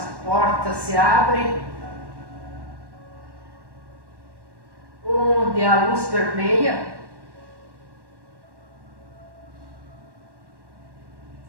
portas se abrem, onde a luz permeia,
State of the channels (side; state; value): left; late; 1.1 ms